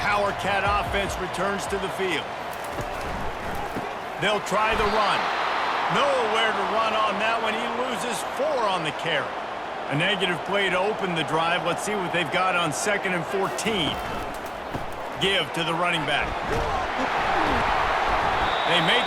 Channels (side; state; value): both; identical; correlation 1.00